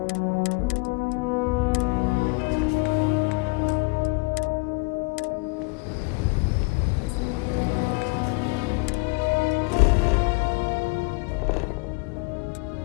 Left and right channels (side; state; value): right; quieter; 27.3 dB